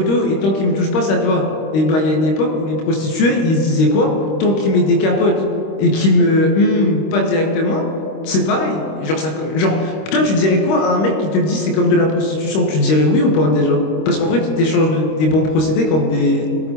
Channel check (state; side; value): late; right; 26 ms